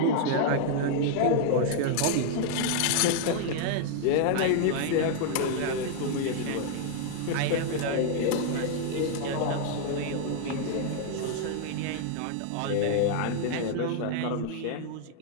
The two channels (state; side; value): different; both; correlation 0.00